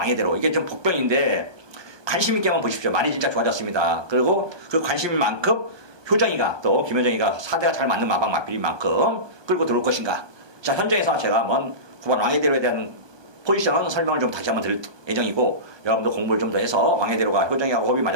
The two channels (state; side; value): late; left; 1.2 ms